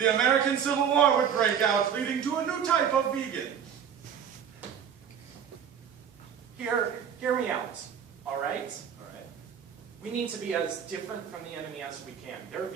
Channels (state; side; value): quieter; left; 8.1 dB